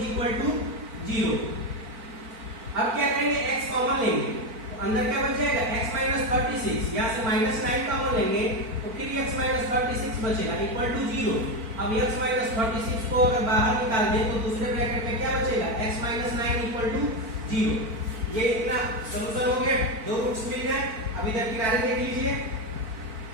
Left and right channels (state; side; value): late; left; 4.5 ms